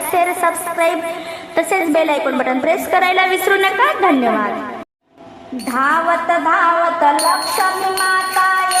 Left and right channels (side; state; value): both; identical; correlation 1.00